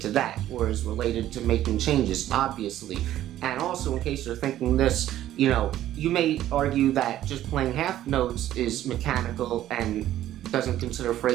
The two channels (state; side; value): quieter; left; 12.9 dB